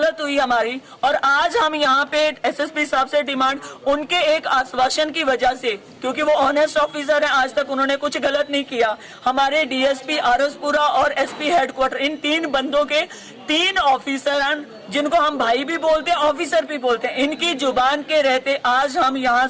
हुई हमारी। और आज हम यहाँ पे SSP साहब से डिमांड, उनके एक आश्वासन की वजह से, क्योंकि वो ऑनेस्ट ऑफिसर है, आज तक उन्होंने कुछ गलत नहीं किया। हमारे DSP आरसपुरा और SP हेडक्वार्टर, इन 3 बंदों के 3 ऑफिसर हैं, जिनको हम भाई भी बोलते हैं, ऑफिसर भी बोलते हैं। इनकी जुबान के रहते आज हम यहाँ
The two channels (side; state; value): both; identical; correlation 1.00